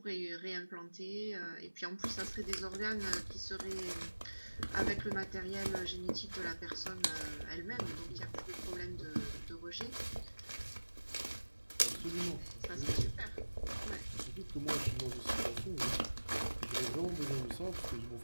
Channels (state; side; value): inverted; both; correlation -1.00